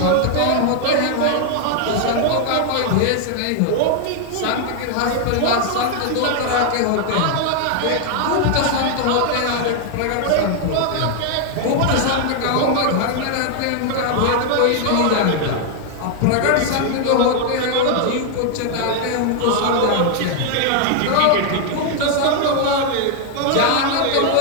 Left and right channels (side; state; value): both; different; correlation 0.00